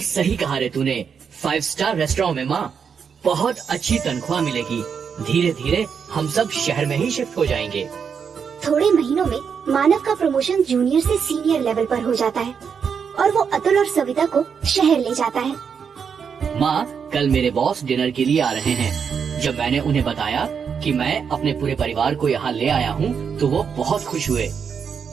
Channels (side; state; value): left; quieter; 6.7 dB